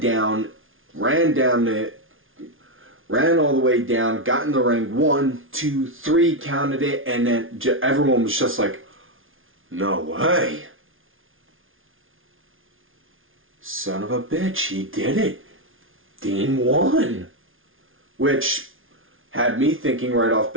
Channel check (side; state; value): left; late; 0.58 ms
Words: all the way down, got in the ring, 1, 2, 3, counted it, and then everyone was just like, "No way. Son of a bitch, he did it. Dean won." Which had me thinking right off